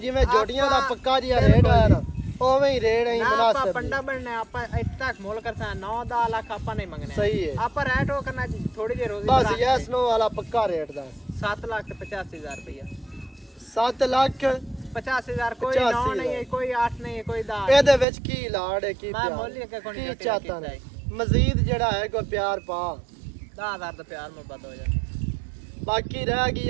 ਜੋਟੀਆਂ ਦਾ ਪੱਕਾ ਜਿਹਾ ਰੇਟ ਆਇਆ ਨਾ ਉਵੇਂ ਹੀ ਰੇਟ ਹੈ ਆਪਾਂ ਮੁਨਾਸਿਬ ਪੰਡਾ ਬਣਨਾ ਆਪਾਂ ਇੱਥੇ ਤੱਕ ਮੋਲ ਕਰਤਾ 9-10 ਲੱਖ ਆਪਾਂ ਨਹੀਂ ਮੰਗਨੇ ਸਹੀ ਹੈ ਆਪਾਂ ਰੇਟ ਉਹ ਕਰਨਾ ਥੋੜੀ ਜਿਹੀ ਰੋਜ਼ੀ ਬਸ ਯੈਸ ਨੋ ਵਾਲਾ ਪੱਕਾ ਰੇਟ ਦਾ 7,85,000 ਰੁਪਇਆ 7 ਲੱਖ 50,000 ਕੋਈ 9 ਨਹੀਂ ਹੈ ਕੋਈ 8 ਨਹੀਂ ਹੈ ਕੋਈ 10 ਇਹਦੇ ਵਿੱਚ ਕੀ ਲਾੜ ਹੈ ਕੀ ਮੈਂ ਪਿਆਰ ਮੁੱਲ ਹੀ ਅੱਗੇ ਕੋਈ ਕੀ ਨਹੀਂ ਚਾਹਤਾ ਨੇ ਮਜ਼ੀਦ ਜਿਹੜਾ ਹੈ ਕੋਈ ਪਿਆਰ ਪਾ 10,000 ਦਾ ਪਿਆਰ ਮੁਹੱਬਤ ਹੋ ਜਾ ਬਾਕੀ ਰਹਿ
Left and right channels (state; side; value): drops out; left; at 18.1 s